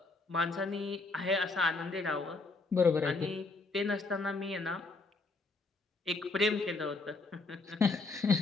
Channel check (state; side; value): quieter; right; 3.6 dB